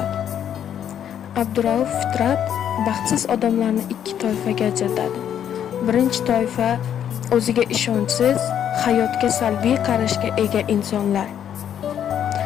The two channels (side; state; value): right; quieter; 9.5 dB